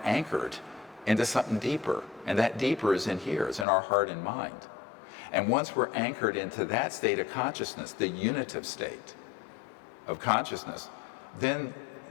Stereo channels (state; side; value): drops out; right; at 3.7 s